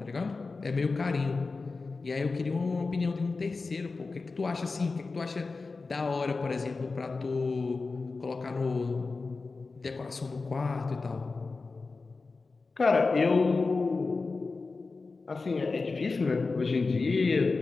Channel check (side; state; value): right; quieter; 4.0 dB